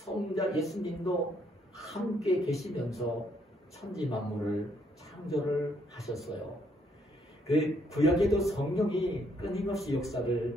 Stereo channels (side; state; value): both; normal; correlation 0.71